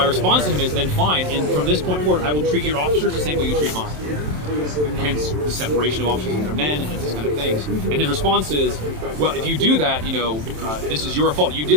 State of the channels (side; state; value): left; late; 27 ms